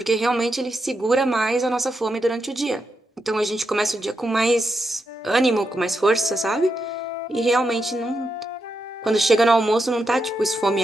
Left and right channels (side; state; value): both; normal; correlation 0.85